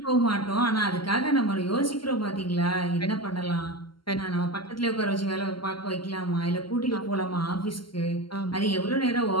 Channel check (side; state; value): right; late; 0.73 ms